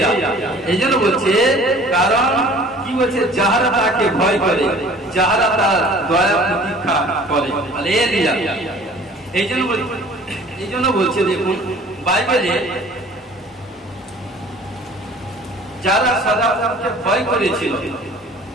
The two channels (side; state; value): both; normal; correlation 0.49